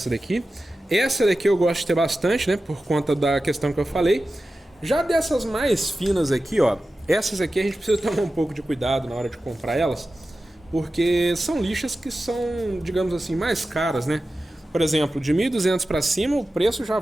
daqui. Essa daqui eu gosto de ter bastante, né, por conta da questão que eu falei. Já dessas mais finas aqui, ó, essas aqui a gente precisa tomar um pouco de cuidado na hora de comprar elas, porque são lixas que são, digamos assim, mais caras, né? Por exemplo, de 1.200 para cima, o preço já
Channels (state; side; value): normal; both; correlation 0.94